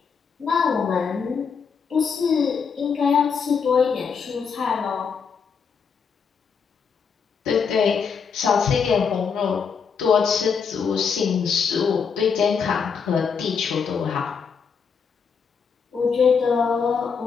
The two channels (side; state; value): right; quieter; 6.1 dB